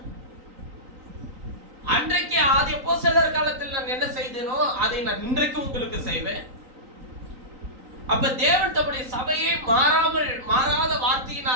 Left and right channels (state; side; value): late; left; 3.9 ms